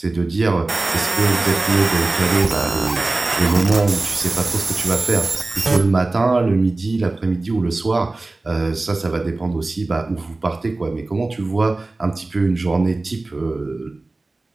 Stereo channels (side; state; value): left; quieter; 3.2 dB